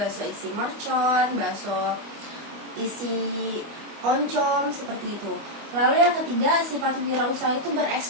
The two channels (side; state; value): left; late; 25 ms